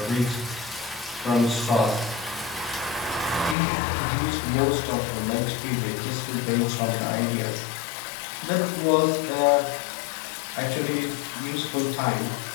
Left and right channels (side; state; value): right; drops out; at 3.6 s